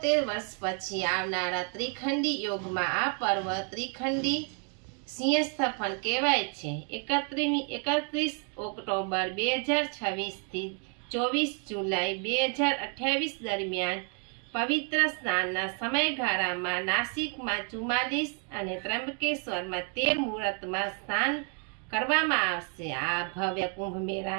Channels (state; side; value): quieter; left; 38.7 dB